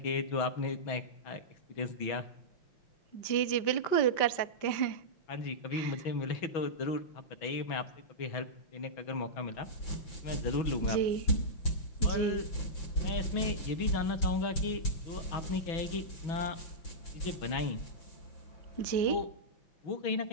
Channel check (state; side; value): late; right; 5.9 ms